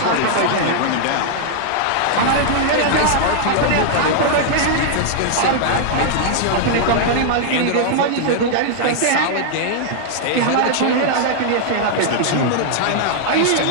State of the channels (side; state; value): both; different; correlation -0.01